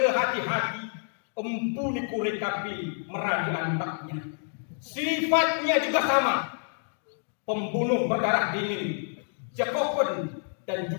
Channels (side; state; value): right; silent; digital silence